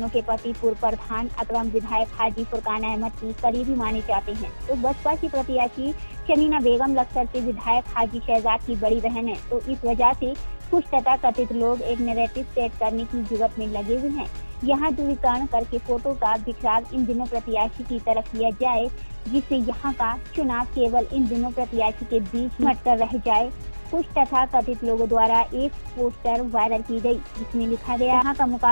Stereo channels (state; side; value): inverted; both; correlation -1.00